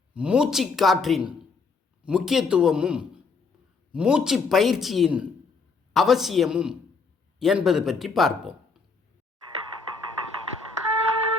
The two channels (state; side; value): quieter; right; 4.5 dB